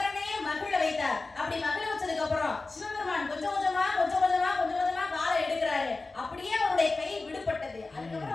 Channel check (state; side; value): quieter; right; 3.5 dB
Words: மகிழ வைத்தார். அப்படி மகிழ வச்சதுக்கு அப்புறம் சிவபெருமான் கொஞ்சம் கொஞ்சமா காலை எடுக்கிறாரு. அப்படியே அவருடைய கை விடுபட்டது. அதுக்கப்புறம்